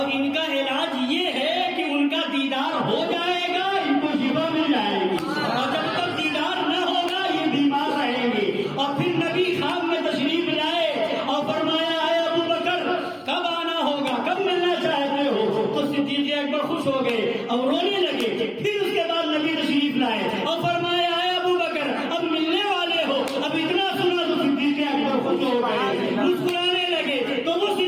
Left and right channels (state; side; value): identical; both; correlation 1.00